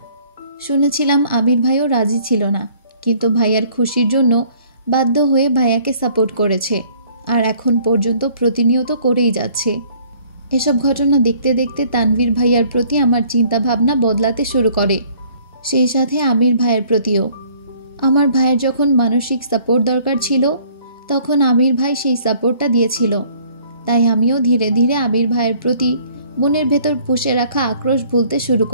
শুনেছিলাম আবির ভাইও রাজি ছিল না, কিন্তু ভাইয়ার খুশির জন্য বাধ্য হয়ে ভাইয়াকে সাপোর্ট করেছে, আর এখন পর্যন্ত প্রতিনিয়ত করেই যাচ্ছে। এসব ঘটনা দেখতে দেখতে তানভীর ভাইয়ার প্রতি আমার চিন্তা ভাবনা বদলাতে শুরু করে, সেই সাথে আমির ভাইয়ের প্রতিও। আমার ভাইয়ের যখন মানসিক সাপোর্ট দরকার ছিল, তখন আবির ভাই সেই সাপোর্টটা দিয়েছিল। তাই আমিও ধীরে ধীরে আবির ভাইয়ের প্রতি মনের ভেতর পুষে রাখা আক্রোশ ভুলতে শুরু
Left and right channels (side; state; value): both; inverted; correlation -0.58